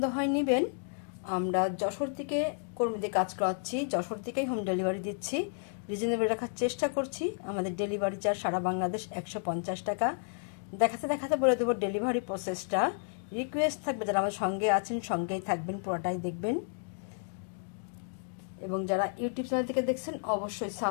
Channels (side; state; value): right; silent; 57 dB below the other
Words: হয় নেবেন। আমরা যশোর থেকে কর্মীদের কাজ করাচ্ছি, যশোর থেকেই হোম ডেলিভারি দিচ্ছি। রিজনেবল রাখার চেষ্টা করছি। আমাদের ডেলিভারি চার্জ সারা বাংলাদেশ 150 টাকা। দেখাতে দেখাতে বলে দেবো ডেলিভারি প্রসেসটা। রিকোয়েস্ট থাকবে যারা আমার সঙ্গে আছেন সঙ্গেই থাকবেন, পুরোটাই দেখবেন। এবং যারা ইউটিউব চ্যানেল থেকে দেখছেন অবশ্যই